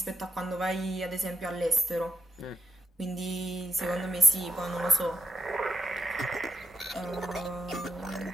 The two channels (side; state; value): both; normal; correlation 0.80